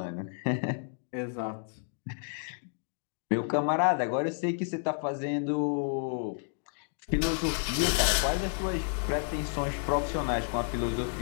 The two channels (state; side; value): silent; right; 57 dB below the other